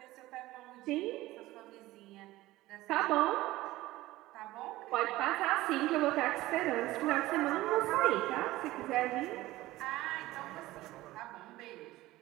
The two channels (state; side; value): quieter; left; 17.4 dB